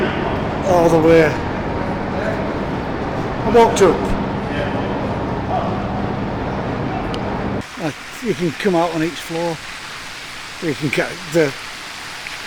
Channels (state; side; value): identical; both; correlation 1.00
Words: all the way. I walked up. You can come out on each floor. You can get the